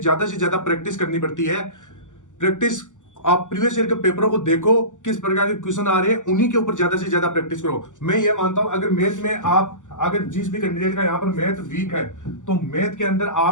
प्रैक्टिस करनी पड़ती है। प्रैक्टिस, आप प्रीवियस ईयर के पेपरों को देखो, किस प्रकार के क्वेश्चन आ रहे हैं, उन्हीं के ऊपर ज्यादा से ज्यादा प्रैक्टिस करो। मैं ये मानता हूं अगर मैथ में आप, अगर जिस भी कैंडिडेट का यहाँ पर मैथ वीक है, तो मैथ के अंदर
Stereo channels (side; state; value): right; late; 0.86 ms